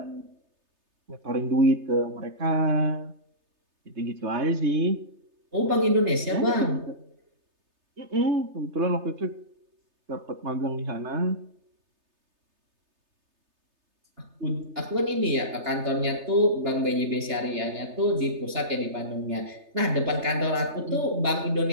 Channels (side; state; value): left; late; 3.3 ms